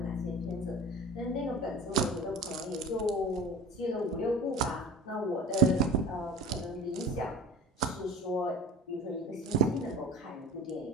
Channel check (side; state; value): both; normal; correlation 0.37